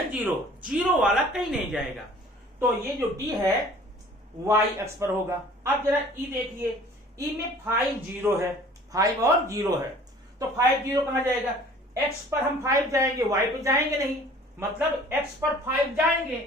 0, 0 वाला कहीं नहीं जाएगा। तो ये जो डी है वाई अक्ष पर होगा। अब जरा ई देखिए, ई में 5 0 है, 5 और 0 है, तो 5 0 कहां जाएगा, एक्स पर हम 5 जाएंगे, वाई पे जाएंगे नहीं, मतलब एक्स पर 5 जाएंगे,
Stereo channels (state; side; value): normal; both; correlation 0.50